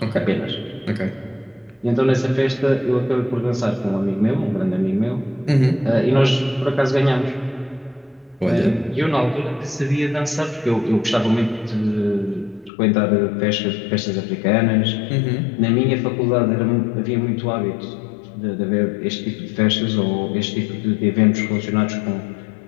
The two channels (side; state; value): right; drops out; at 12.7 s